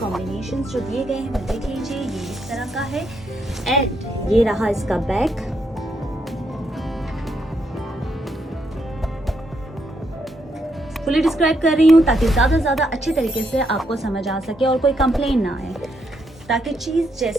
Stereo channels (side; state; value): both; normal; correlation 0.77